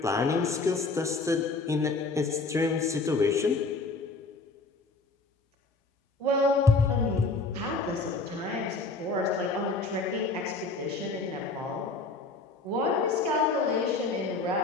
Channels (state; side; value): quieter; right; 3.7 dB